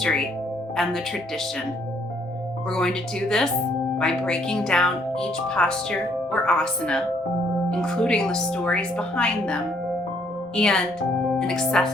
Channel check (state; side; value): normal; both; correlation 0.67